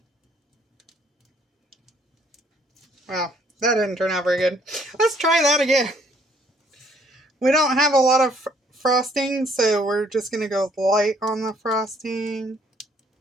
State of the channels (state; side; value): normal; both; correlation 0.64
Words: Wow, that didn't turn out very good. Let's try that again. We don't have a lot of frosting, so we're just going to go light on the frosting.